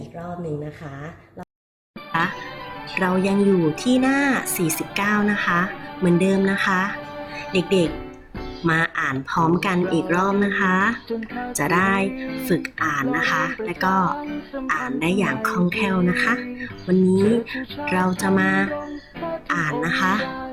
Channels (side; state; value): both; identical; correlation 1.00